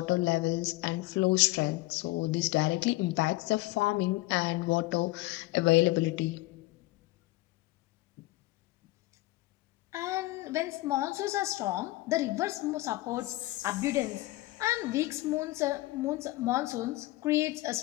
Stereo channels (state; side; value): quieter; right; 19.2 dB